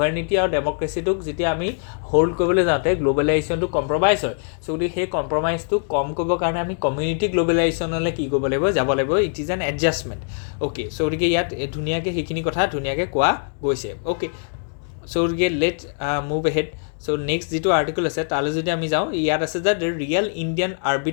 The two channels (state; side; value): silent; right; digital silence